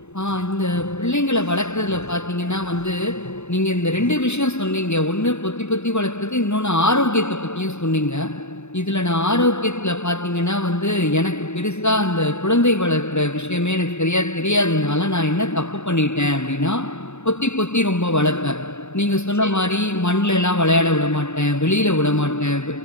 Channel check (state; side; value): late; right; 0.82 ms